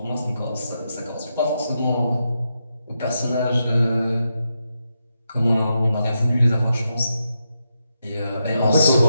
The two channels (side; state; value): both; inverted; correlation -0.85